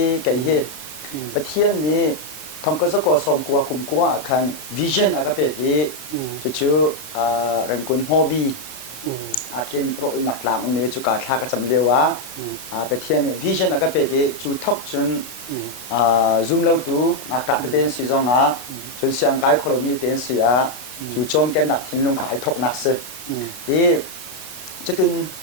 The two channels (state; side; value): late; right; 9.2 ms